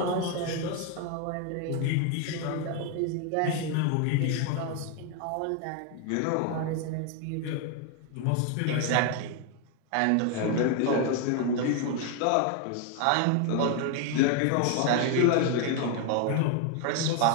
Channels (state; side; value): different; both; correlation 0.01